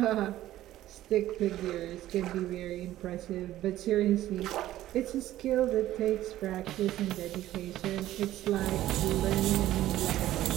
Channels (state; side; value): quieter; left; 14.1 dB